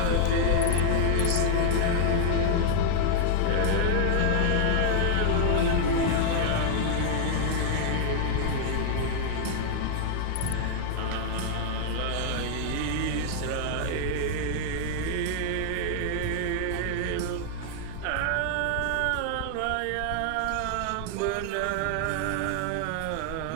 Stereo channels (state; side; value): different; both; correlation 0.00